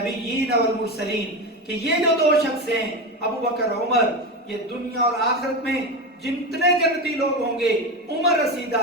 والمرسلین، کہ یہ جو دو شخص ہیں ابوبکر اور عمر، یہ دنیا اور آخرت میں جتنے جنتی لوگ ہوں گے، عمر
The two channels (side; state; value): both; normal; correlation 0.20